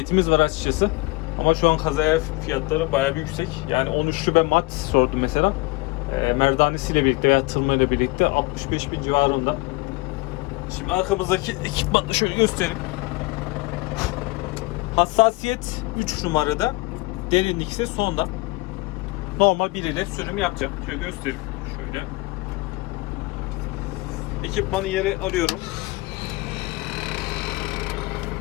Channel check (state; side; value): quieter; right; 23.7 dB